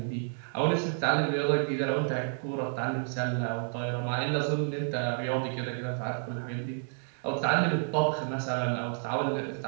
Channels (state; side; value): silent; left; 56 dB below the other